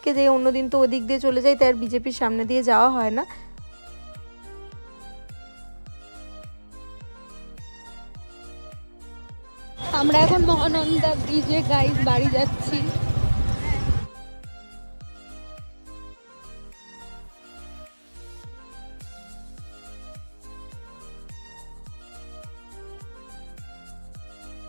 যাই, অন্যদিন তো ওদিক দিয়ে চলে যাই, তাই আর বিজেপির সামনে দিয়ে যাওয়া হয় না। আমরা এখন মহানন্দা ব্রিজে গাইজ বাড়ি যাচ্ছি।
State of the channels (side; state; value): both; inverted; correlation -1.00